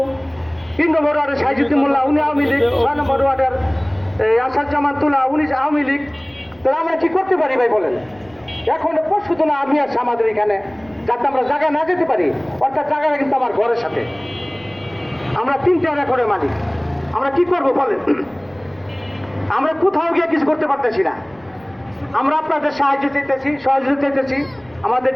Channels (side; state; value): right; noise; rumble, 28 dB below the sound